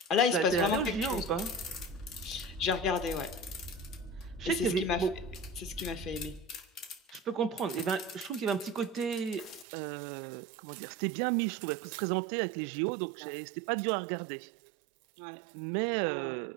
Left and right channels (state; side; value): drops out; left; at 9.7 s